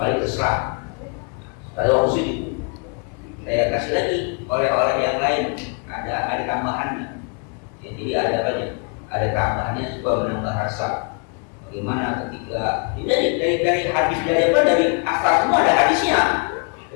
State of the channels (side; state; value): right; quieter; 39.1 dB